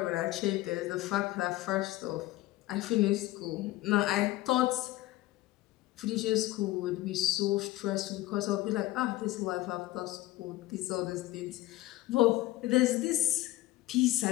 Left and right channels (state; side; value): quieter; right; 17.1 dB